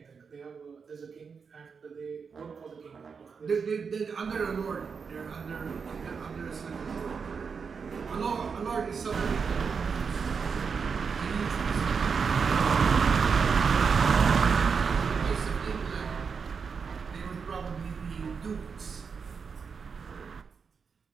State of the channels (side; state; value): left; quieter; 5.7 dB